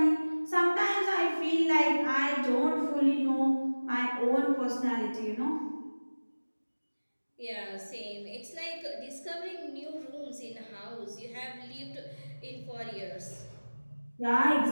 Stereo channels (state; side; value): inverted; both; correlation -1.00